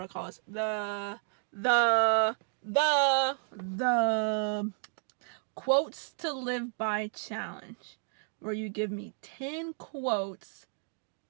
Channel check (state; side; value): silent; left; 56 dB below the other